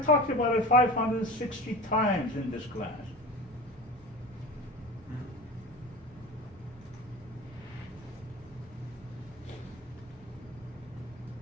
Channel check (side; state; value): right; noise; hum, 26 dB below the sound